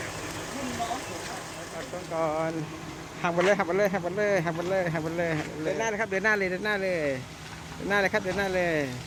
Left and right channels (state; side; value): identical; both; correlation 1.00